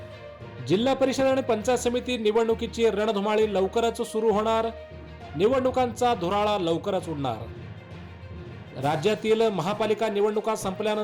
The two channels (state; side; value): identical; both; correlation 1.00